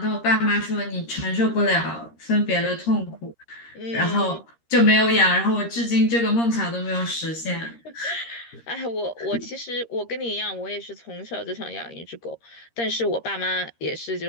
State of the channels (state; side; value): late; right; 13 ms